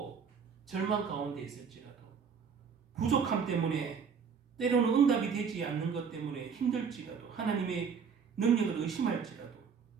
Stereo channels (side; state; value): left; quieter; 6.3 dB